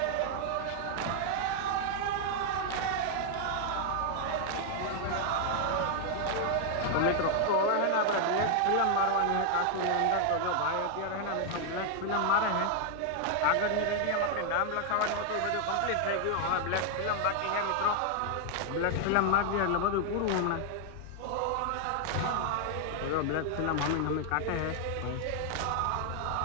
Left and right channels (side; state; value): both; different; correlation 0.00